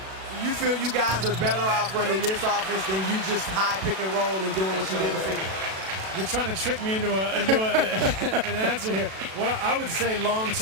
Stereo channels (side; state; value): left; late; 37 ms